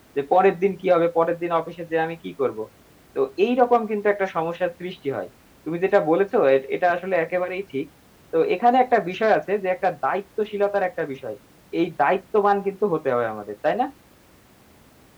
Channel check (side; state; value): both; identical; correlation 1.00